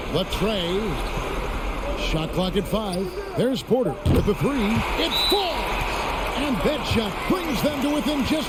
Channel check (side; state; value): both; identical; correlation 1.00